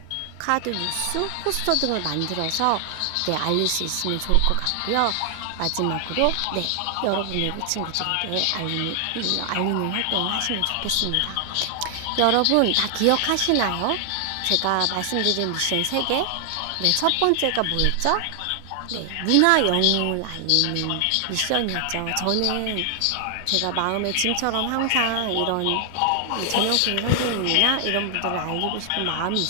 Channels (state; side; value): different; both; correlation 0.00